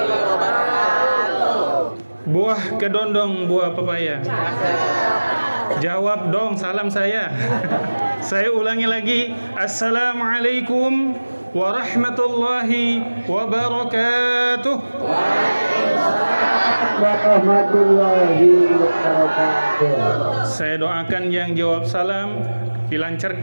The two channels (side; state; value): both; inverted; correlation -1.00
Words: Buah kedondong, buah pepaya. Jawab dong salam saya. Saya ulangi lagi. Assalamualaikum warahmatullahi wabarakatuh. Warahmatullahi wabarakatuh. Saya doakan yang jawab salam